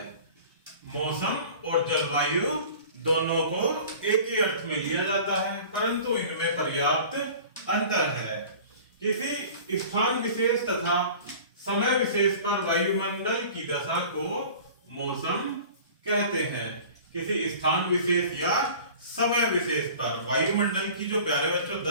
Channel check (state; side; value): inverted; both; correlation -0.43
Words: मौसम और जलवायु दोनों को एक ही अर्थ में लिया जाता है, परंतु इनमें पर्याप्त अंतर है। किसी स्थान विशेष तथा समय विशेष पर वायुमंडल की दशा को मौसम कहते हैं। किसी स्थान विशेष या समय विशेष पर वायुमंडल की जो प्यारे बच्चों